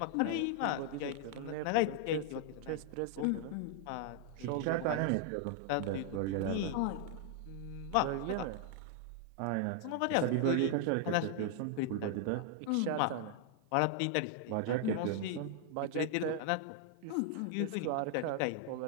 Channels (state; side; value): different; both; correlation 0.00